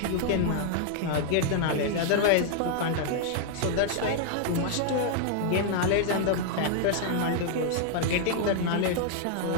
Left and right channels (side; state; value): both; different; correlation -0.01